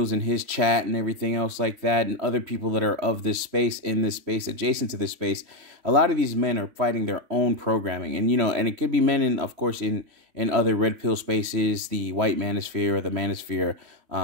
and his chat and everything else like that, and other people that are of this space, in this space, adjacent to this space. A lot of these men are fighting their own programming, and and it could be men of course in other red pill spaces, the white manosphere or the manosphere,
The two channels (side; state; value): left; late; 3.5 ms